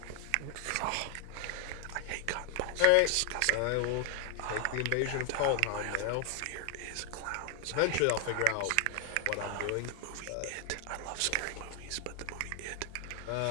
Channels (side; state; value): both; different; correlation 0.00